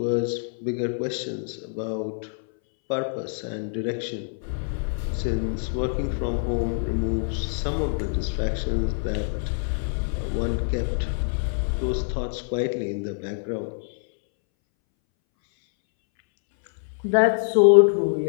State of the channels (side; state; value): right; silent; 62 dB below the other